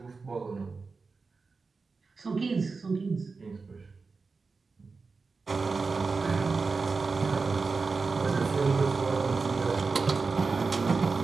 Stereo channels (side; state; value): left; quieter; 4.3 dB